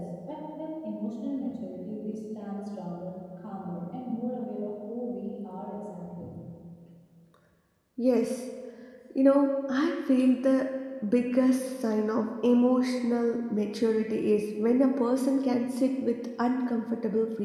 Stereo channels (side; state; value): both; identical; correlation 1.00